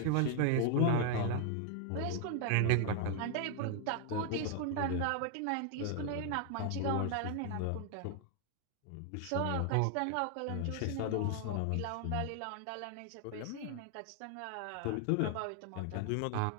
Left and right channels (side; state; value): both; different; correlation 0.00